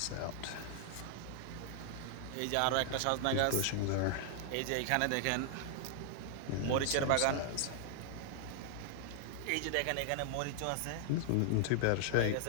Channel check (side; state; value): both; different; correlation -0.01